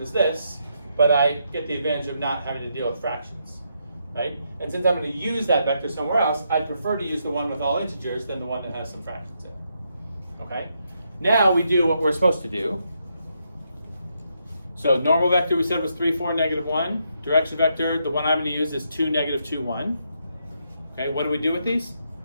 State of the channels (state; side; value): inverted; both; correlation -0.78